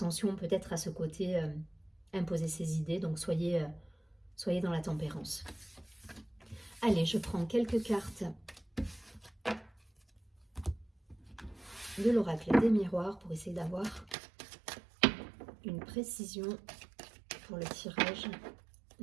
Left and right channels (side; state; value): left; drops out; at 14.2 s